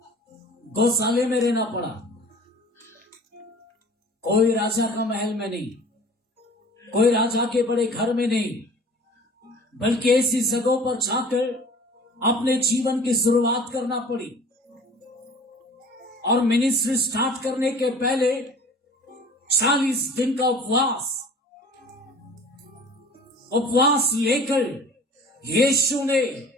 गौशाले में रहना पड़ा, कोई राजा का महल में नहीं, कोई राजा के बड़े घर में नहीं, बल्कि ऐसी जगहों पर जाकर अपने जीवन की शुरुआत करना पड़ी। और मिनिस्ट्री स्टार्ट करने के पहले 40 दिन का उपवास लेकर यीशु ने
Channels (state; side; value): normal; both; correlation 0.45